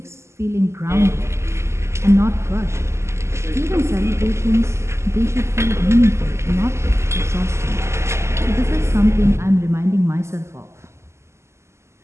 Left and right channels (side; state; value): left; late; 0.13 ms